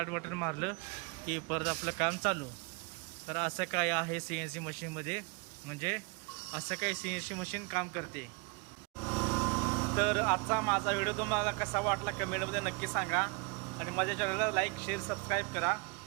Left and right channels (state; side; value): quieter; left; 30.4 dB